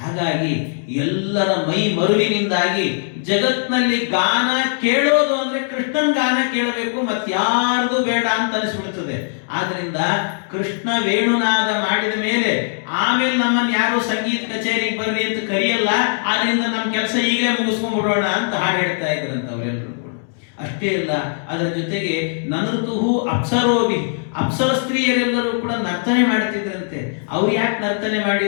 ಹಾಗಾಗಿ ಎಲ್ಲರ ಮೈ ಮರುವಿನಿಂದಾಗಿ ಜಗತ್ನಲ್ಲಿ ಗಾನ ಕೇಳೋದು ಅಂದ್ರೆ ಕೃಷ್ಣನ್ ಗಾನ ಕೇಳಬೇಕು, ಮತ್ತಾರ್ದು ಬೇಡ ಅಂತ ಅನಿಸ್ಬಿಡ್ತದೆ. ಆದ್ರಿಂದ ಕೃಷ್ಣ ವೇಣುನಾದ ಮಾಡಿದ ಮೇಲೆ ಆಮೇಲೆ ನಮ್ಮನ್ನು ಯಾರು ಸಂಗೀತ ಕಚೇರಿಗೆ ಬರ್ರಿ ಅಂತ ಕರೆಯಲ್ಲ. ಆದ್ರಿಂದ ನಮ್ಮ ಕೆಲಸ ಈಗಲೇ ಮುಗಿಸ್ಕೊಂಡ್ಬಿಡೋಣ ಅಂತ ಹಾಡು ಹೇಳ್ತಾ ಇದ್ರಂತ ಅವರೆಲ್ಲರೂ ಕೂಡ. ಅಷ್ಟೇ ಅಲ್ಲ, ಅದರ ಜೊತೆಗೆ ನನೃತುಹು ಅಪ್ಸರೋಭಿ, ಅಪ್ಸರ ಸ್ತ್ರೀಯರೆಲ್ಲರೂ ಕೂಡ ನರ್ತನೆ ಮಾಡ್ತಿದ್ರಂತೆ. ಅವ್ರು ಯಾಕೆ ನರ್ತನೆ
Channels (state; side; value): silent; right; digital silence